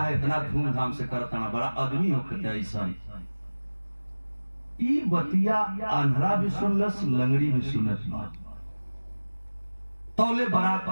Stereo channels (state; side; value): inverted; both; correlation -1.00